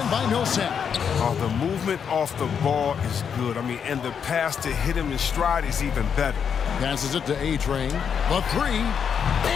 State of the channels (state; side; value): quieter; right; 7.3 dB